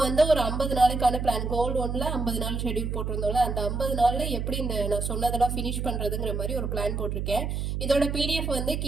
வந்து ஒரு 50 நாளைக்கான பிளான், கோல் 1ல் 50 நாள் ஷெடியூல் போட்டிருந்தோம்ல, அந்த 50 நாளில் எப்படி இந்த நான் சொன்னதெல்லாம் ஃபினிஷ் பண்ணுறதுங்கிற மாதிரி ஒரு பிளான் போட்டிருக்கேன். இதோட பிடிஎஃப் வந்து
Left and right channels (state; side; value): noise; right; hum, 2 dB below the sound